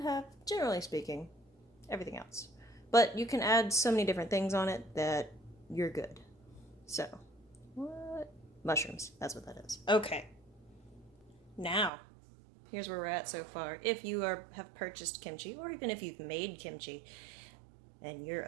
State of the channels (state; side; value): drops out; left; at 11.9 s